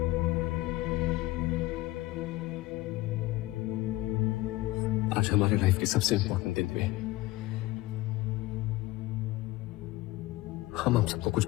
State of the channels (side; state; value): right; quieter; 18.4 dB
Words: आज हमारे life के सबसे important दिन पे हम सबको कुछ